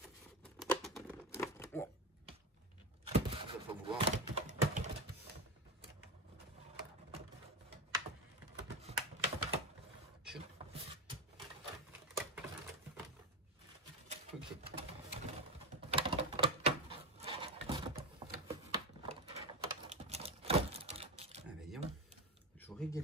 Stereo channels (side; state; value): both; normal; correlation 0.18